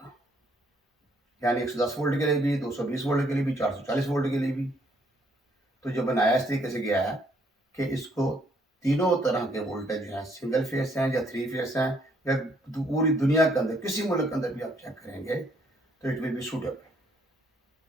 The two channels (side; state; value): both; normal; correlation 0.68